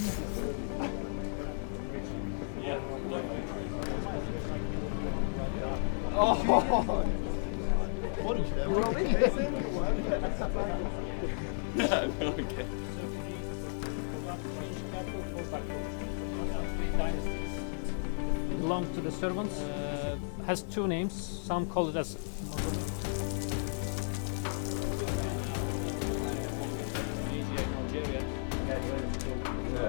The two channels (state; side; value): silent; right; digital silence